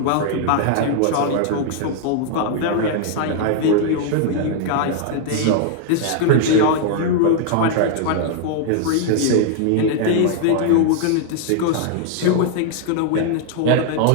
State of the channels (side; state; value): both; different; correlation 0.00